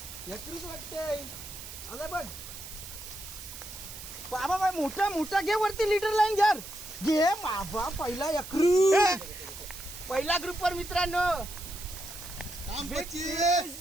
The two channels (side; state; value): right; noise; hiss, 12 dB below the sound